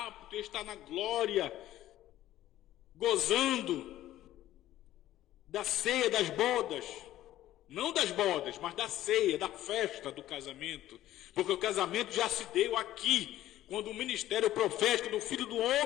está na glória, gozando da ceia das bodas, não das bodas, mas da ceia, da festa do casamento, porque o casamento já se deu aqui, quando o ministério profético do Filho do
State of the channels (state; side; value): quieter; right; 13.9 dB